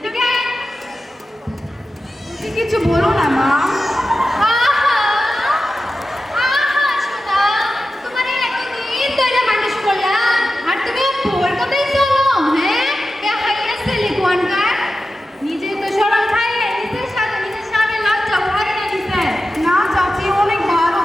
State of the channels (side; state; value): both; normal; correlation 0.92